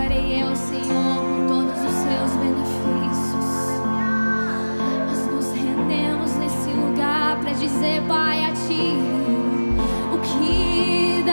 eu, Senhor, com todos os seus benefícios? Nós nos rendemos nesse lugar para dizer, Pai, a Ti, o que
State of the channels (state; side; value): inverted; both; correlation -1.00